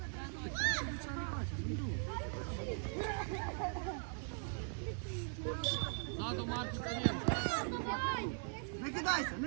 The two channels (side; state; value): left; silent; 51 dB below the other